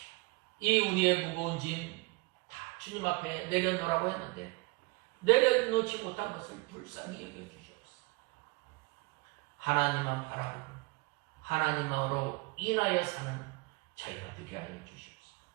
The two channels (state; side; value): quieter; left; 26.1 dB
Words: 이 우리의 무거운 짐 다 주님 앞에 내려놓으라고 했는데 내려놓지 못한 것을 불쌍히 여겨주시옵소서. 하나님만 바라보고 하나님으로 인하여 사는 저희가 되게 하여 주시옵소서.